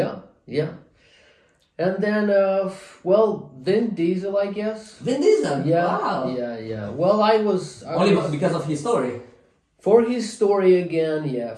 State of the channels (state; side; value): identical; both; correlation 1.00